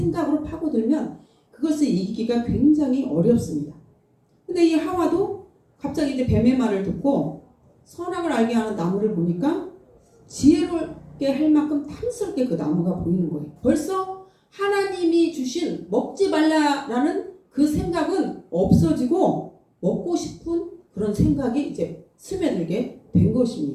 파고들면 그것을 이기기가 굉장히 어렵습니다. 근데 이 하와도 갑자기 이제 뱀의 말을 듣고 선악을 알게 하는 나무를 보니까 지혜롭게 할 만큼 탐스럽게 그 나무가 보이는 거예요. 벌써 하나님이 주신 먹지 말라라는 그 생각은 없어지고 먹고 싶은 그런 생각이 이제 스며들게 된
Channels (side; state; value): both; identical; correlation 1.00